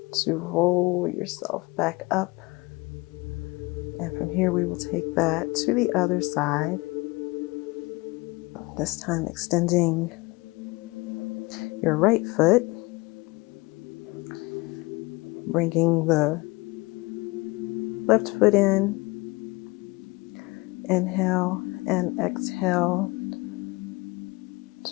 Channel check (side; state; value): right; quieter; 24.0 dB